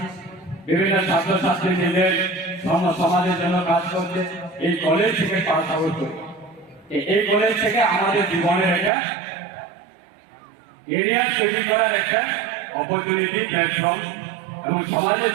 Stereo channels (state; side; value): drops out; left; at 8.9 s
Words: বিভিন্ন ছাত্রছাত্রী নিজের সমাজের জন্য কাজ করছে এই কলেজ থেকে পাস আউট করে এই কলেজ থেকে আমাদের জীবনের একটা এরিয়া তৈরি করার একটা অপরচুনিটি প্ল্যাটফর্ম এবং সমাজের